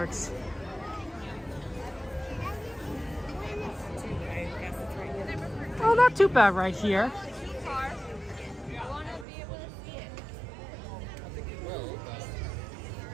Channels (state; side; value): drops out; left; at 9.2 s